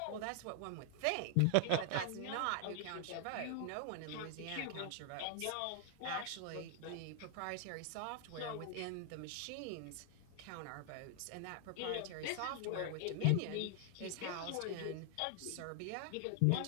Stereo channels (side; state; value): both; different; correlation 0.00